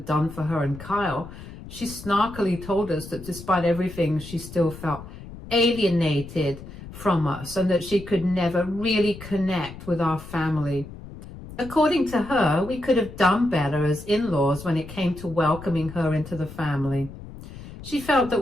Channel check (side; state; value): left; noise; rumble, 14 dB below the sound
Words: done for her and Kyle, she snarkily told us that despite everything, she still felt alienated from us and that she could never really connect with our family. According to her, we could have done better as in-laws when it came to welcoming her into the family. She felt that